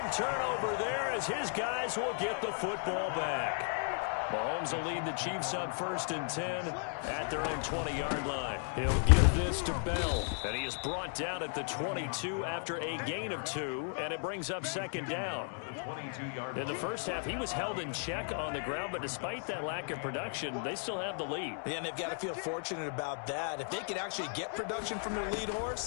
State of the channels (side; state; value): right; silent; 54 dB below the other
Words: turnover there as his guys will get the football back. Mahomes will lead the Chiefs on 1st and 10 at their own 20-yard line. He'll give this to Bell. And he is brought down at the 22 after a gain of 2, and it brings up 2nd down. In the first half, he was held in check on the ground, but despite that lack of production, they still have the lead. Yeah, and they've got to feel fortunate about that. If they could actually get production from their lead